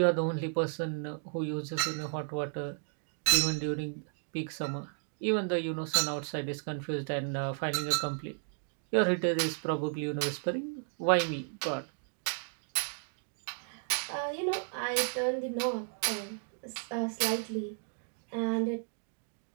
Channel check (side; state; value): left; silent; 55 dB below the other